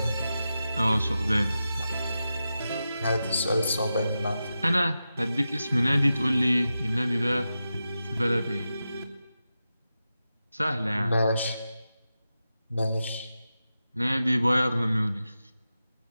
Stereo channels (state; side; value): inverted; both; correlation -0.91